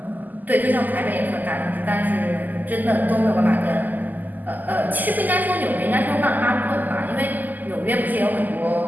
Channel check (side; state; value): left; late; 0.084 ms